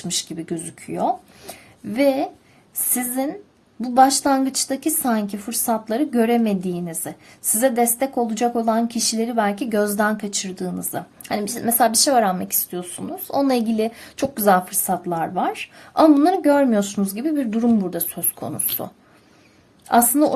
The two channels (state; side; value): identical; both; correlation 1.00